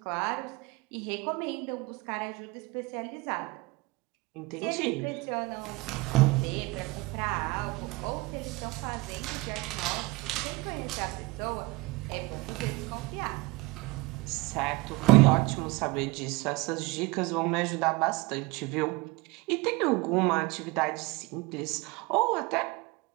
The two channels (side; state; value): left; quieter; 22.6 dB